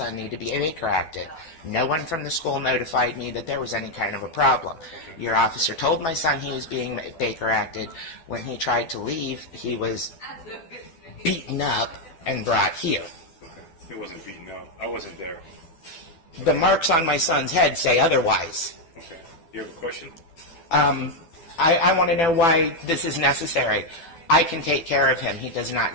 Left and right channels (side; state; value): right; late; 12 ms